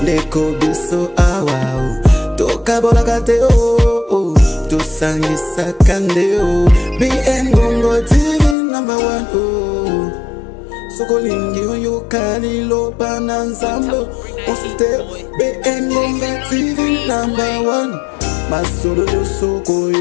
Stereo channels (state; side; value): drops out; right; at 8.6 s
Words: Ndeko biso awa Toka bola kate o Tosangisa kande o BN Bonga TV number 1 o Soko lingi yo kali lo pananzambo Osite BN Bonga TV number 1 Masolo yo soko